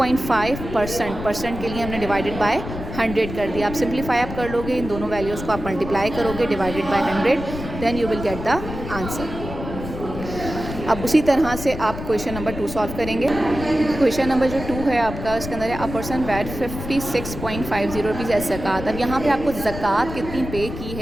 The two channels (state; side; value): noise; left; rumble, 9 dB below the sound